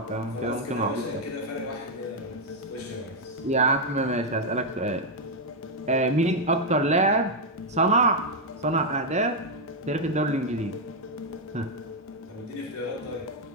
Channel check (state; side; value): normal; both; correlation -0.01